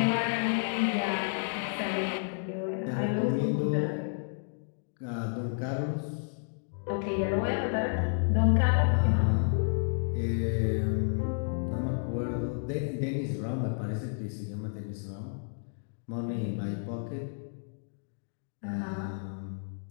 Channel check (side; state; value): right; silent; digital silence